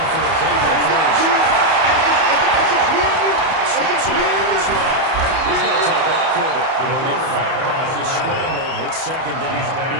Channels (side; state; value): left; late; 31 ms